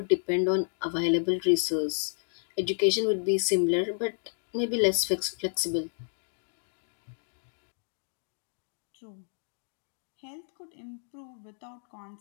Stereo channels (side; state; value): right; silent; digital silence